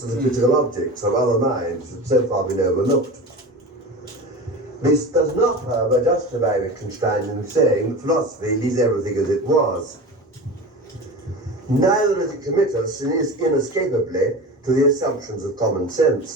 of physical objects of other minds that so far been overlooked. This does not, however, justify Wittgenstein in saying that philosophy leaves everything as it was. Neither does it commit us inescapably to the assumptions of common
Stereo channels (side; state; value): both; normal; correlation 0.30